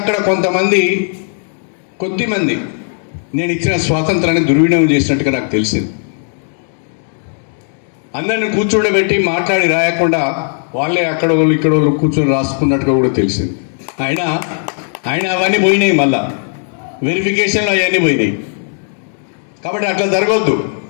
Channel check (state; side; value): silent; right; 62 dB below the other